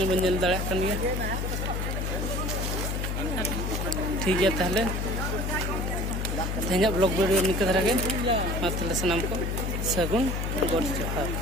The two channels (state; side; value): noise; left; hum, 1 dB below the sound